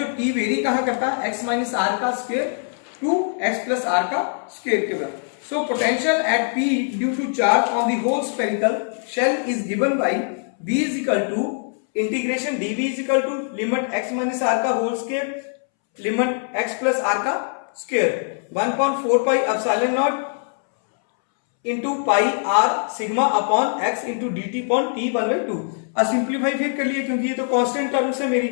टी वेरी कहां करता है, एक्स माइनस आर का square to x plus r का स्क्वायर के बराबर। So potential at p due to charge on the whole spherical shell is given by b is equal to integration d v is equal to limit x minus r का whole square limit x plus r का square 1.4 pi epsilon naught into पाई r sigma upon x into d t upon t 1/2। अब simplify फिर कर लिए, क्योंकि ये तो constant terms है मेरी,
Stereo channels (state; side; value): silent; right; 64 dB below the other